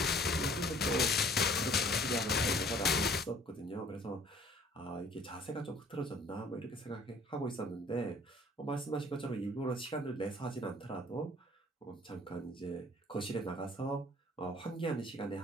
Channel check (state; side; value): normal; both; correlation 0.54